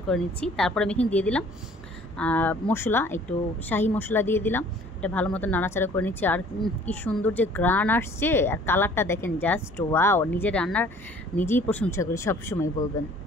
করে নিচ্ছি। তারপরে আমি এখানে দিয়ে দিলাম মশলা, একটু শাহি মশলা দিয়ে দিলাম। এটা ভালো মতো নাড়াচাড়া করে নিচ্ছি। আর কি সুন্দর যে গ্রান আসছে, আর কালারটা দেখেন, জাস্ট ওয়াও। নিজের রান্নার নিজেই প্রশংসা করি, সবসময় বলবেন।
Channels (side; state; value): both; normal; correlation 0.53